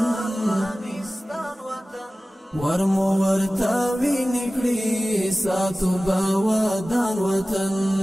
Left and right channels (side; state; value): both; normal; correlation 0.97